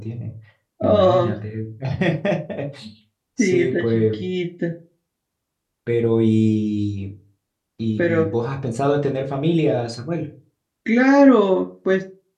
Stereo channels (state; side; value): identical; both; correlation 1.00